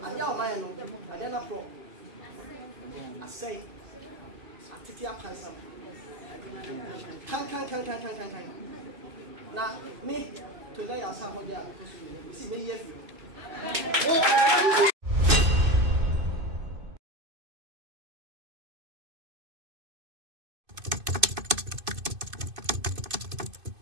I know my own, I don't know. I say, I take your handsome. Can. Now, me to lay us out there because we see me here.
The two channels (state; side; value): late; left; 2.5 ms